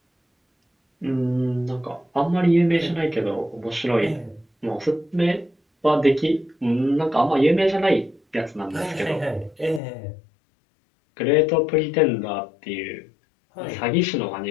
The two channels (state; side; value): drops out; right; at 9.8 s